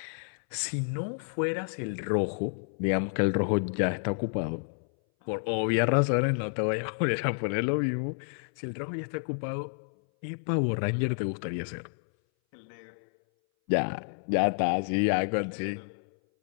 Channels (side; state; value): right; silent; 58 dB below the other